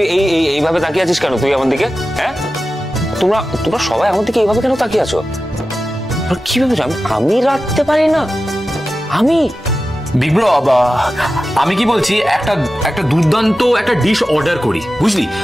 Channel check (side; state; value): both; normal; correlation 0.93